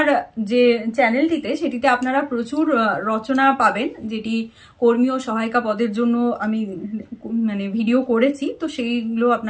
যে চ্যানেলটিতে সেটিতে আপনারা প্রচুর রচনা পাবেন, যেটি কর্মী ও সহায়িকা পদের জন্য আমি ভিডিও করেছি, তো সেইগুলো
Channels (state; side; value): identical; both; correlation 1.00